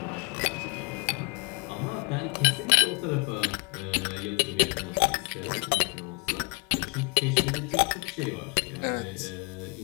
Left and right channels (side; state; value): right; quieter; 31.1 dB